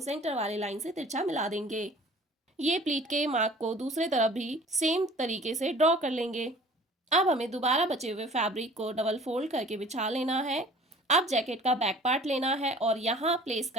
सेंटर वाली लाइन से तिरछा मिला देंगे। ये प्लीट के मार्क को दूसरे तरफ भी सेम तरीके से ड्रॉ कर लेंगे। अब हमें दोबारा बचे हुए फैब्रिक को डबल फोल्ड करके बिछा लेना है। अब जैकेट का बैक पार्ट लेना है और यहाँ प्लेस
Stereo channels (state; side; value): normal; both; correlation 0.48